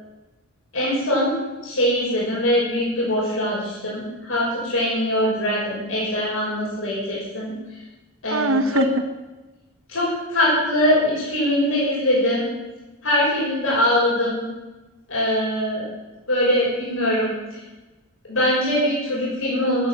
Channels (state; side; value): normal; both; correlation 0.05